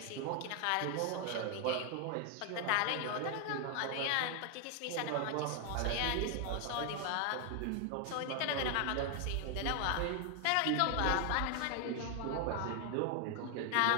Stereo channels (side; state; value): both; different; correlation 0.00